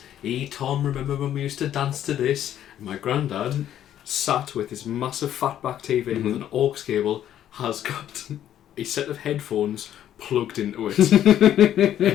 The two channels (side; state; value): right; quieter; 11.1 dB